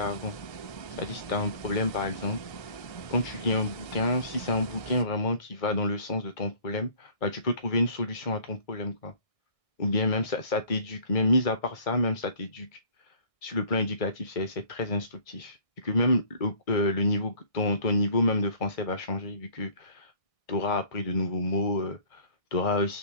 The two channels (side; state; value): right; late; 1.6 ms